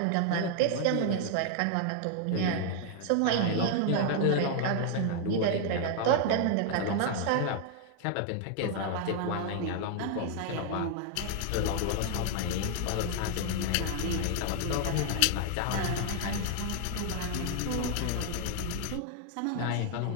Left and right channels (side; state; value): both; different; correlation 0.00